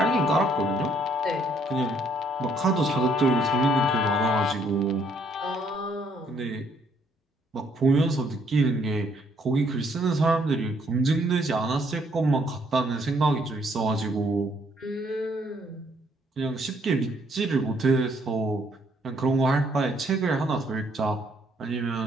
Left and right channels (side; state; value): both; normal; correlation 0.67